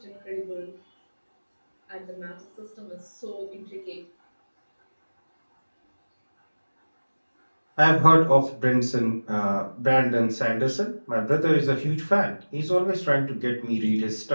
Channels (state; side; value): inverted; both; correlation -1.00